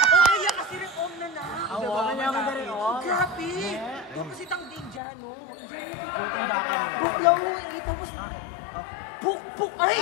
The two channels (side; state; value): right; drops out; at 5.0 s